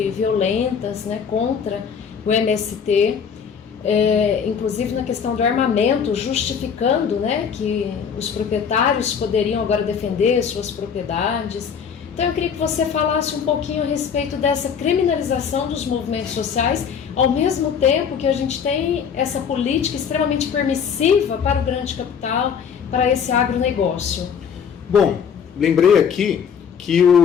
violentas, né, contra o MST, inclusive na questão do armamento, justificando, né, que os proprietários poderiam agora defender suas propriedades. Então eu queria que você falasse um pouquinho a respeito dessa criminalização dos movimentos sociais, ao mesmo tempo que a gente tem essa política extremamente permissiva para o grande capital, para esse agronegócio. Bom, lembrei aqui que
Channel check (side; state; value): right; quieter; 7.1 dB